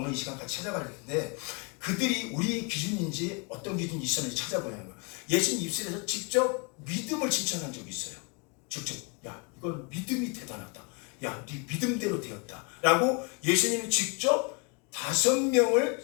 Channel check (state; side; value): quieter; right; 33.4 dB